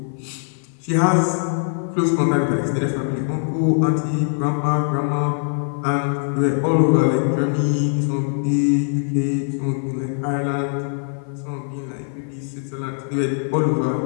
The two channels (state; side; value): silent; right; 55 dB below the other